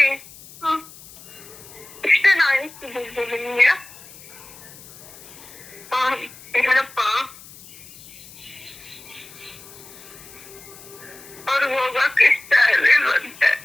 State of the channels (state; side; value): noise; left; hiss, 19 dB below the sound